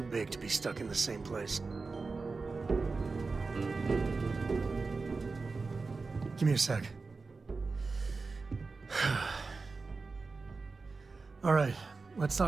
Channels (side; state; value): left; quieter; 4.1 dB